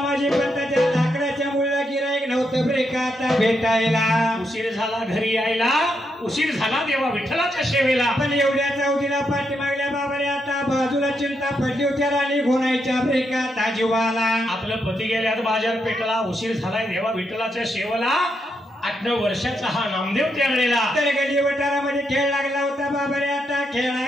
पंताच्या लाकडाच्या मुळीला गिराईक नव्हतं रे का आता भेटायला उशीर झाला घरी यायला उशीर झाला देवा विठ्ठलाच्या सेवेला पण एवढ्या चौथीला पाठी मागल्या बाबा रे आता बाजूला चिंता पडली होत्या राणी घोणायच्या ब्रेका ताजीवाला आपलं पती गेल्यात बाजार पेटला उशीर झालाय देवा विठ्ठलाच्या सेवेला 8-9 वर्षाचा हा नामदेव त्यावेळेला तर गली वटारामध्ये खेळ लागला होता बाबा रे आता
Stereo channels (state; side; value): normal; both; correlation 0.81